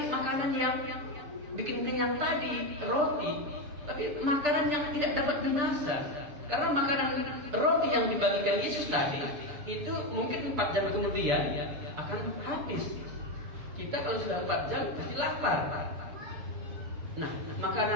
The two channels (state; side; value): late; left; 6.8 ms